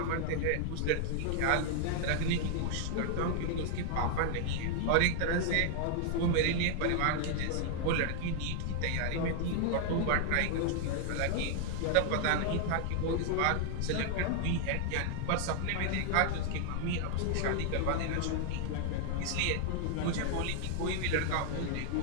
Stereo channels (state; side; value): different; both; correlation 0.00